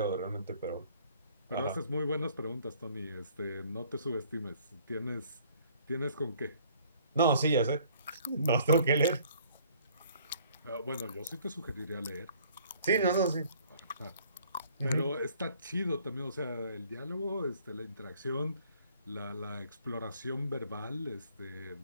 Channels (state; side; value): inverted; both; correlation -0.58